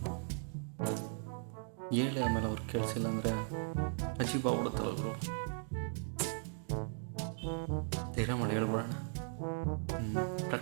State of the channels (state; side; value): silent; left; 53 dB below the other